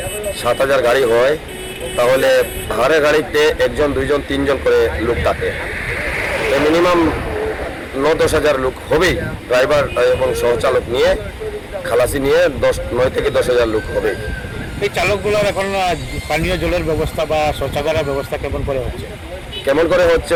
7 হাজার গাড়ি হয় তাহলে হারে গাড়িতে 1 জন 2 জন 3 জন করে লোক থাকে। মিনিমাম 9-10 হাজার লোক হবেই, ড্রাইভার এবং সহচালক নিয়ে, খালাসি নিয়ে 9 থেকে 10 হাজার লোক হবে। এই চালকগুলোর এখন পানীয় জলের ব্যবস্থা বা শৌচাগারের ব্যবস্থা কেমন করে হচ্ছে? কেমন করে হচ্ছে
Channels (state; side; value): identical; both; correlation 1.00